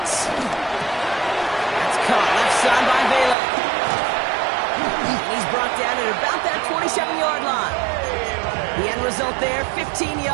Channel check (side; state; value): left; drops out; at 3.4 s